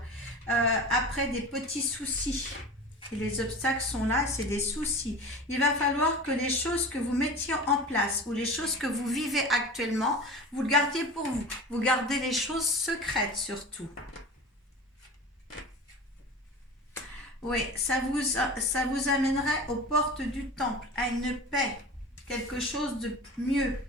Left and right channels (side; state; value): both; normal; correlation 0.35